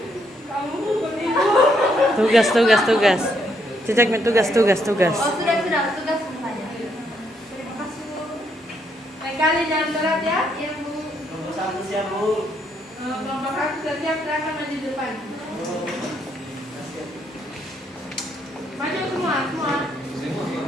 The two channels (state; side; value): normal; both; correlation 0.74